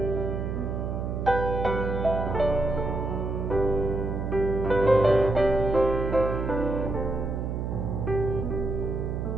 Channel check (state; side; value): noise; right; hum, 2 dB below the sound